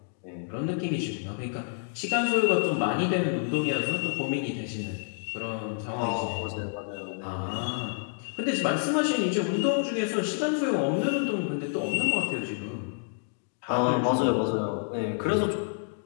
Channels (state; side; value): silent; right; digital silence